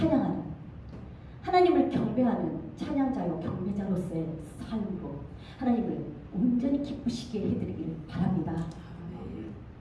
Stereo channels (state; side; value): identical; both; correlation 1.00